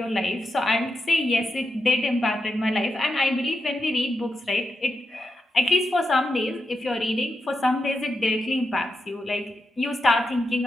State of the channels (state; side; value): normal; both; correlation 0.86